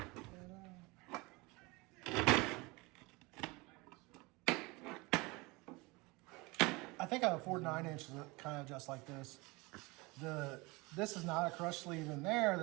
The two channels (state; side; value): quieter; left; 24.9 dB